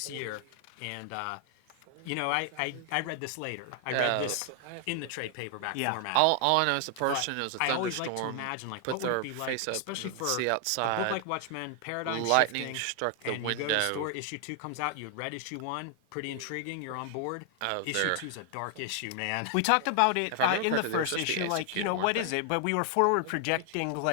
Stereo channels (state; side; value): different; both; correlation 0.00